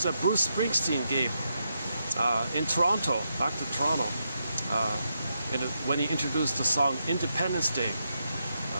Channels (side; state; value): both; inverted; correlation -0.83